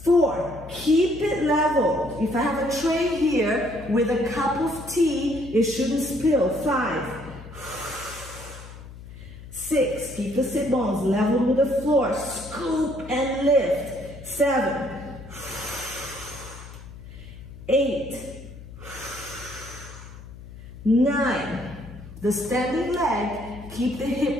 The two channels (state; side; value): noise; left; hum, 15 dB below the sound